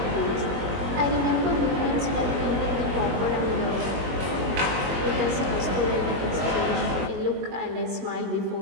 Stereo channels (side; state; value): left; late; 21 ms